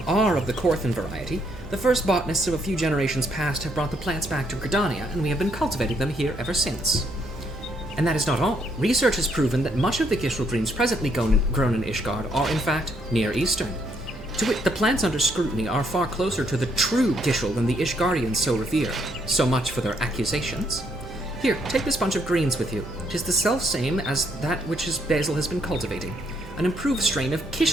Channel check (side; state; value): both; normal; correlation 0.71